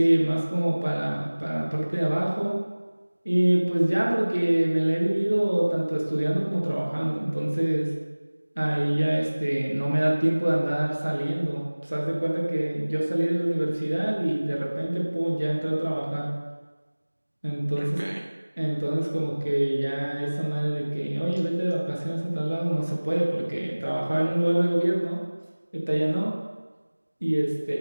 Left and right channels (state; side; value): inverted; both; correlation -1.00